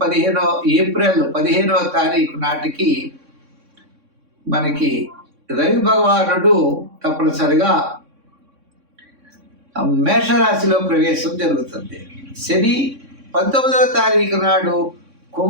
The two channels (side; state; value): left; late; 3.6 ms